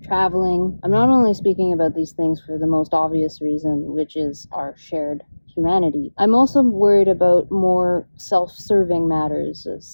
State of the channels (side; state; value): both; inverted; correlation -1.00